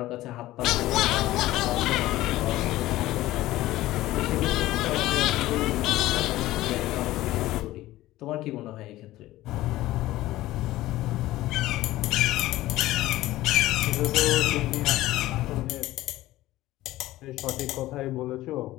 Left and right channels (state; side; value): quieter; right; 16.3 dB